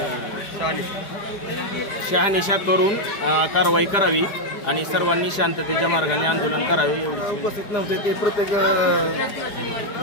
शहानिशा करून कारवाई करावी आणि सर्वांनी शांततेच्या मार्गाने आंदोलन करावे. एवढी उपस्थित नव्हते ते प्रत्येक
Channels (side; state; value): right; late; 4.9 ms